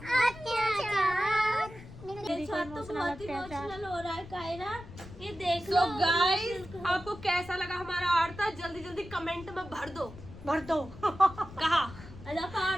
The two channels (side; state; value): left; noise; rumble, 16 dB below the sound